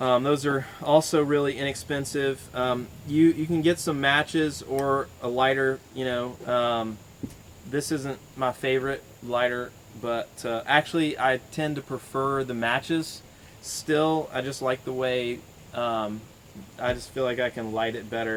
are also really inexpensive. You can get some matches or a lighter. This isn't my favorite lighter, but actually I tend to prefer the matches. Still, I just like the way I just feel like I can light it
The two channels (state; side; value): identical; both; correlation 1.00